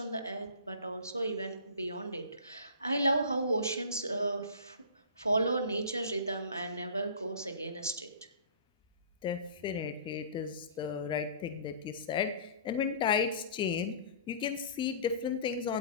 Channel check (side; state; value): both; inverted; correlation -0.41